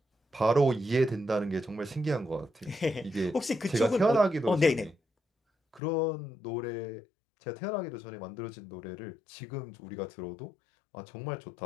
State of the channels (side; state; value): right; drops out; at 5.8 s